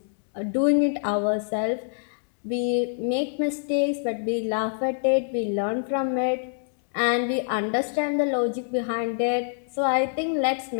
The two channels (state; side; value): silent; right; digital silence